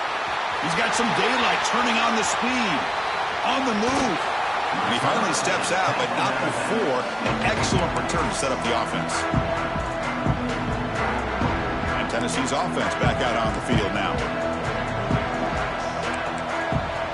He's got some daylight, turning on the speed, on the move. And he finally steps out, but not before an excellent return to set up the offense. And Tennessee's offense back out on the field now.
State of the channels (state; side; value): identical; both; correlation 1.00